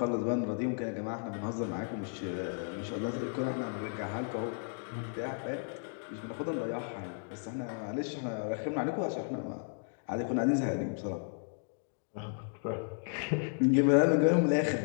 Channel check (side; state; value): right; silent; digital silence